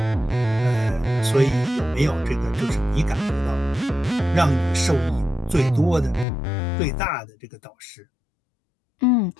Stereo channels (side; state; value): right; drops out; at 6.2 s